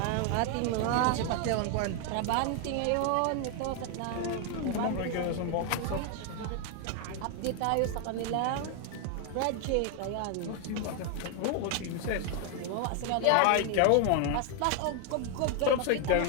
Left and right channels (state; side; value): different; both; correlation 0.00